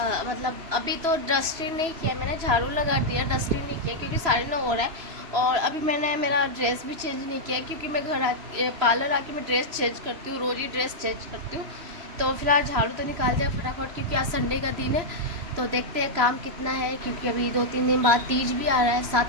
मतलब अभी तो डस्टिंग नहीं किया मैंने, झाड़ू लगा दिया, डस्टिंग नहीं किया क्योंकि 9:30 हो रहा है। और अभी मैंने मेरा ड्रेस भी चेंज नहीं किया क्योंकि मैं पार्लर आके मैं ड्रेस चेंज करती हूँ, रोज़ ही ड्रेस चेंज करती हूँ। तो फिलहाल झाड़ू तो निकाल दिया फटाफट क्योंकि आज संडे का दिन है। तो देखते हैं काम कितना है, क्योंकि अभी 2-3 दिन बाद तीज भी आ रहा है,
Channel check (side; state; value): left; late; 3.0 ms